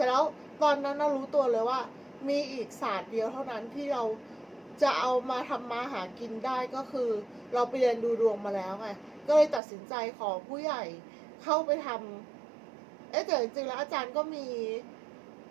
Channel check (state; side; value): drops out; left; at 9.6 s